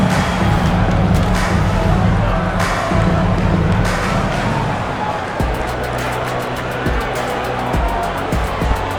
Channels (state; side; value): identical; both; correlation 1.00